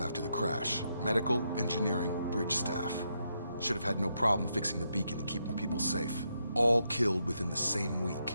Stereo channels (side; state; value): both; inverted; correlation -0.81